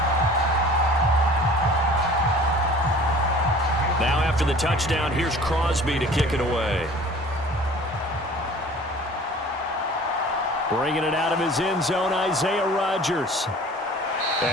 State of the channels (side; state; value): both; normal; correlation 0.46